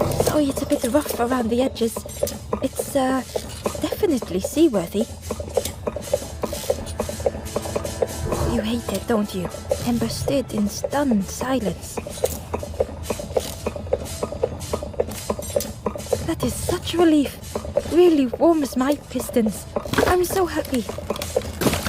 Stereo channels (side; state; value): both; identical; correlation 1.00